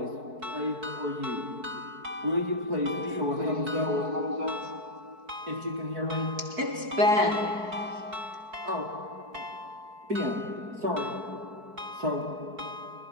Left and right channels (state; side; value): late; left; 4.6 ms